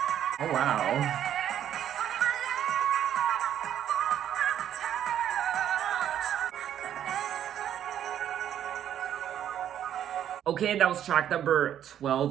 Oh wow. Okay, that was track number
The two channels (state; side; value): quieter; left; 10.3 dB